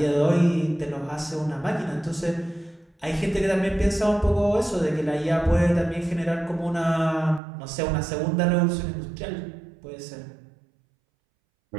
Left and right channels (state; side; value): drops out; left; at 7.4 s